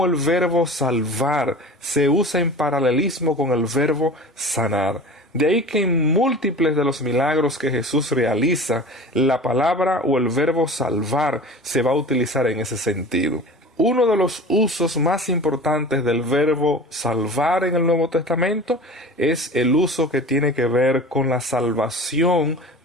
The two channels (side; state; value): both; normal; correlation 0.37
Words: el verbo salvar se usa en paralelismo con el verbo sanar. De ahí que en múltiples de los milagros que Jesús realiza, la palabra o el verbo salvar se va a utilizar en ese sentido. Uno de los usos más importantes del verbo salvar en el Nuevo Testamento es el uso que tiene que ver con la salvación